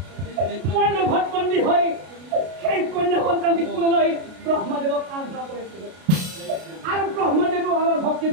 হৈ সেই কন্যা সন্তানটি কোলে লৈ ব্ৰহ্মদেৱক আৰাধনা কৰিছিলো আৰু ব্ৰহ্মদেৱো আমাৰ ভক্তিত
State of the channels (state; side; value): late; left; 32 ms